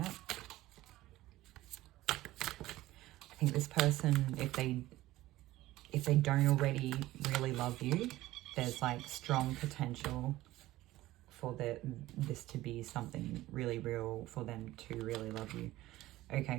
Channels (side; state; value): left; quieter; 16.6 dB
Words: I think this person, if they don't already really love you, there's like strong potential for this to be something really real, for them to really love you.